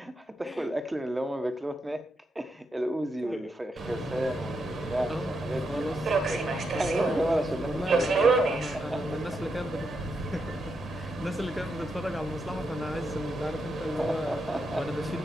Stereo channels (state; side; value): normal; both; correlation 0.83